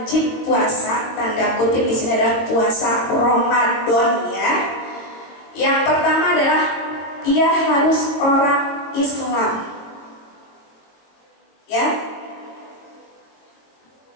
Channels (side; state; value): right; late; 22 ms